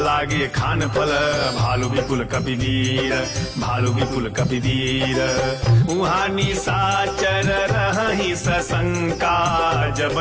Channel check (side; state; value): both; identical; correlation 1.00